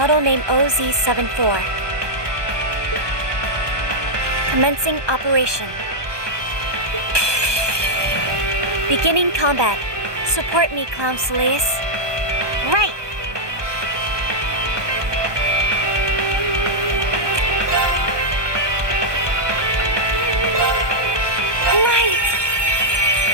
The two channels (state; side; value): late; left; 1.2 ms